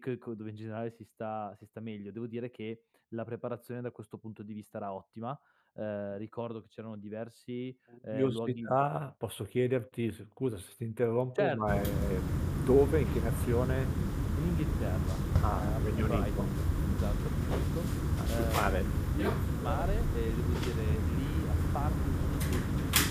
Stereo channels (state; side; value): identical; both; correlation 1.00